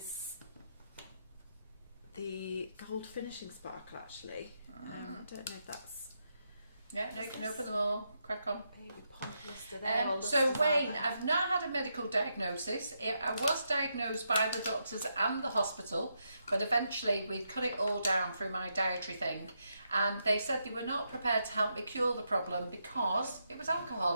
the gold finishing sparkle actually. I don't know if that's... Yeah, no, you can open them all. Crack on. So Wayne, I've not had a medical diagnosis. I was diagnosed by the doctors and the hospital, but eventually we cut it all down through my dietary thing, and they said they were not prepared to help me cure the problem because it was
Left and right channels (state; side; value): inverted; both; correlation -0.82